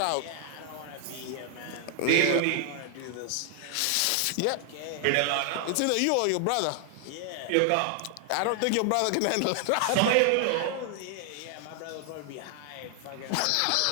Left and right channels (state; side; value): different; both; correlation 0.00